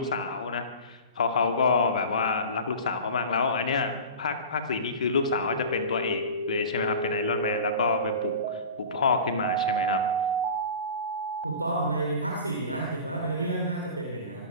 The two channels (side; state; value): both; inverted; correlation -0.36